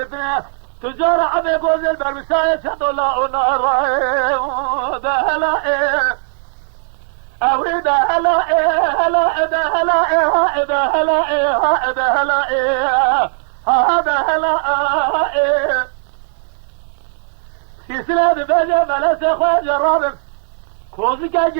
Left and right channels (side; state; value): left; silent; digital silence